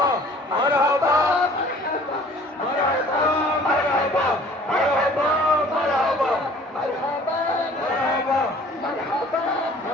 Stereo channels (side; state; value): both; normal; correlation 0.51